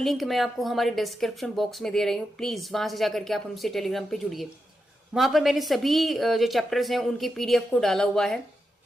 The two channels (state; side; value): normal; both; correlation 0.87